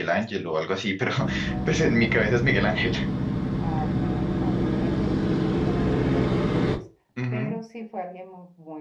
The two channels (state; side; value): identical; both; correlation 1.00